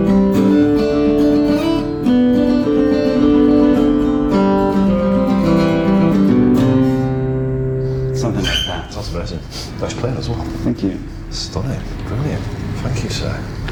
Nice playing as well. Thank you. Stunning. Brilliant. Thank you, sir.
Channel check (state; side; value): identical; both; correlation 1.00